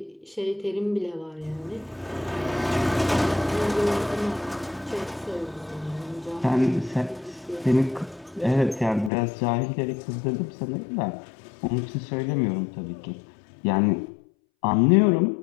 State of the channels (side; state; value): right; drops out; at 9.1 s